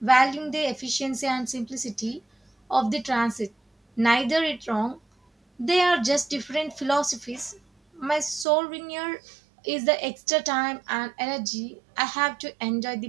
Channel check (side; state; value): left; drops out; at 8.5 s